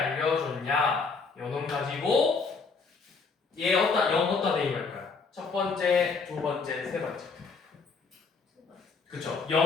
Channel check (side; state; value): right; quieter; 4.7 dB